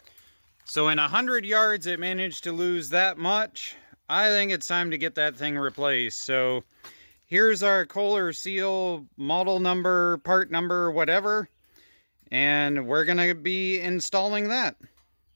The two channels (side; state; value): both; inverted; correlation -1.00